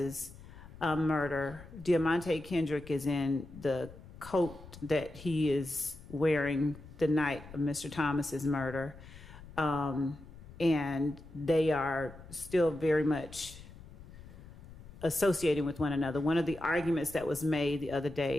murder. Diamante Kendrick is in the coat that he is wearing the night of Mr. Thomas's murder. And they are still very much associating with one another. One of the arguments that was made the other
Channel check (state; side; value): noise; left; rumble, 17 dB below the sound